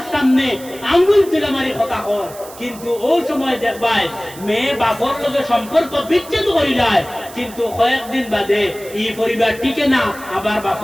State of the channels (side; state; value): right; noise; hiss, 18 dB below the sound